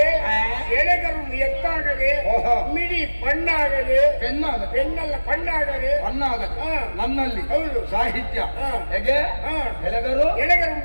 ಎತ್ತಾಗದೆ ಓಹೋ. ಮಿಡಿ ಬಣ್ಣಾಗದೆ ಪೆನ್ನಲ್ಲ ಬಣ್ಣಾಗದೆ ನನ್ನಲ್ಲಿ ಹೌದು. ಸಾಹಿತ್ಯ ಹಾ. ಹೇಗೆ ಎಲೆಗರು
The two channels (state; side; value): inverted; both; correlation -1.00